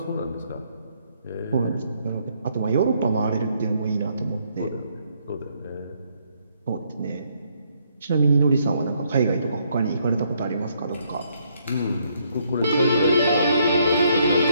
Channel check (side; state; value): both; inverted; correlation -0.72